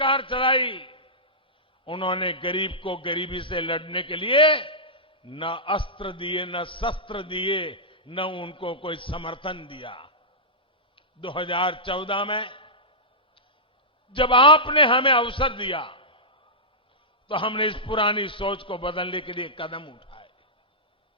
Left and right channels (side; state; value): both; normal; correlation -0.14